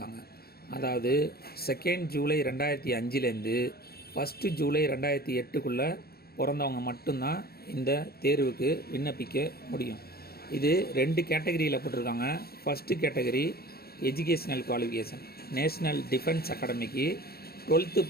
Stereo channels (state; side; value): late; right; 0.45 ms